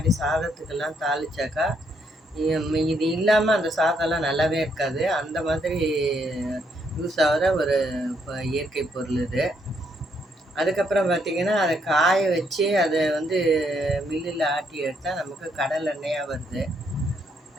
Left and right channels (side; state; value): both; normal; correlation 0.73